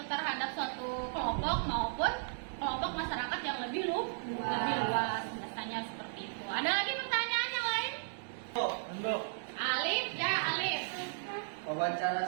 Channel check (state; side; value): silent; left; digital silence